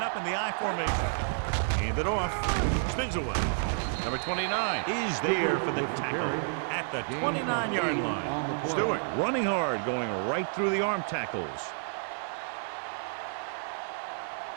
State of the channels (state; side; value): silent; left; digital silence